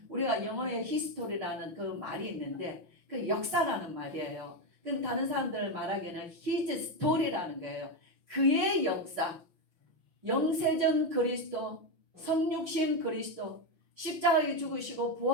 우리가 영어에 히스토리라는 그 말이 있는데 그 역사라는 말이에요. 그럼 다른 사람들 말하기에는 his story라는 거예요. 그의 역사, 영세전 그리스도, 성육신 그리스도, 십자가에 죽으시고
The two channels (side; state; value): left; late; 5.9 ms